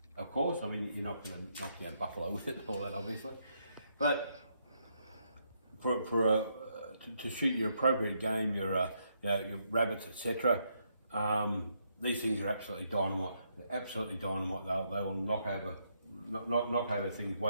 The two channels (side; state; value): both; inverted; correlation -0.77